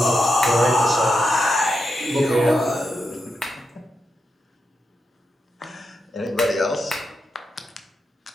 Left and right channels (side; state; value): both; normal; correlation 0.85